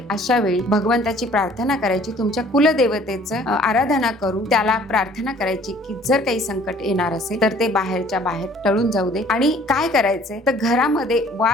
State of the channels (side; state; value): both; normal; correlation 0.55